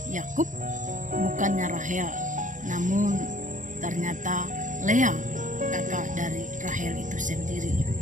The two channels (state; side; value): late; left; 0.37 ms